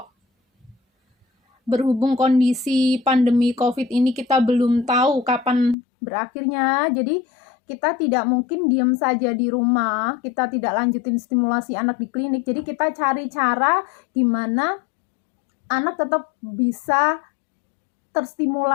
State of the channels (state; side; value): drops out; right; at 5.8 s